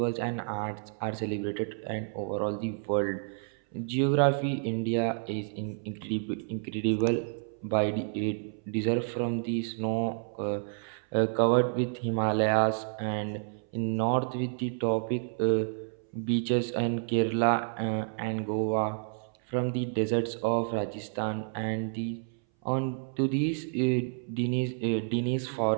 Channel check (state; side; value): silent; left; 58 dB below the other